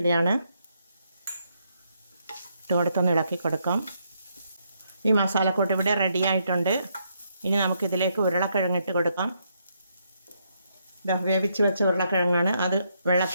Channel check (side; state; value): both; inverted; correlation -0.76